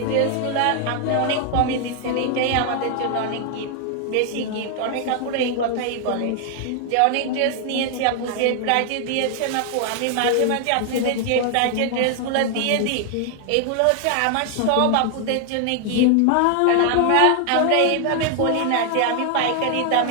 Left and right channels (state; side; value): different; both; correlation 0.00